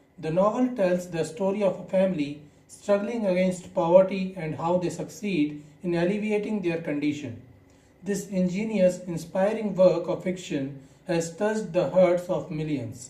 The novel tells the story of a family struggling against poverty and how they succeed in alleviating their condition. This ingenious, inspiring work of fiction has touched the hearts of millions.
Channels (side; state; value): both; identical; correlation 1.00